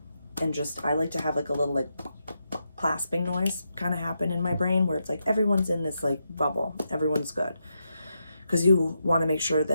And just, I like to have like a little like clasping noise kind of happen in my brain where it's like everyone's in this like bubble. Everyone's good. Because you want to make sure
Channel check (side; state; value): both; inverted; correlation -0.84